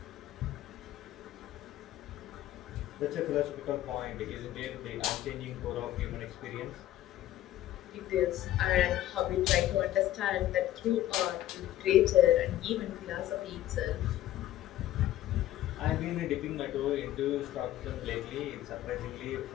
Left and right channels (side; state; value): right; quieter; 13.6 dB